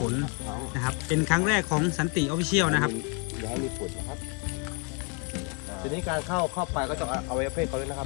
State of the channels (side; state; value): right; quieter; 32.8 dB